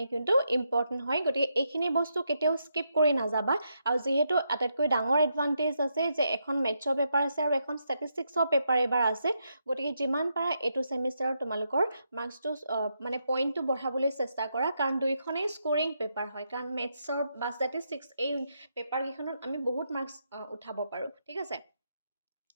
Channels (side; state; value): both; inverted; correlation -0.81